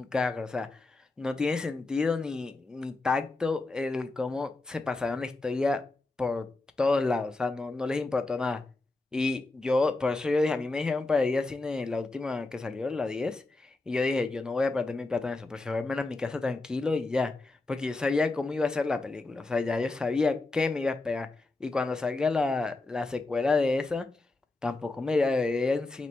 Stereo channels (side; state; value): right; quieter; 3.2 dB